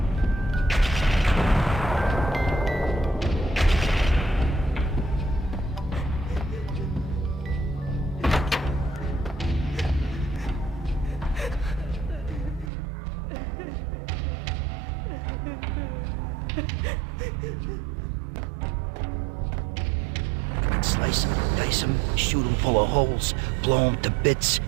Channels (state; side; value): drops out; left; at 12.7 s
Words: Slice them, dice them, shoot them full of holes, blow them to bits,